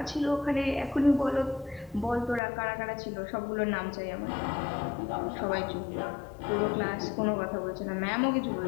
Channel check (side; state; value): right; drops out; at 2.4 s